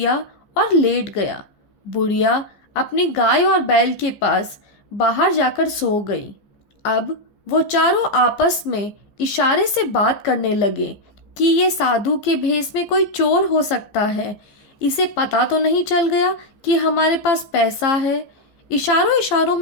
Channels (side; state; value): right; late; 14 ms